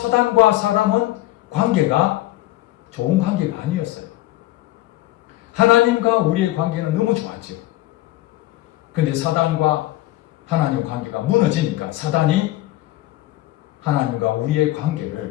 사람은 관계가 좋은 관계가 아니었어요. 하나님과 우리의 관계는 너무 좋았죠. 근데 사단과 하나님 관계가 무너지니까 사단이 하나님과 우리의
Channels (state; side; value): quieter; right; 16.6 dB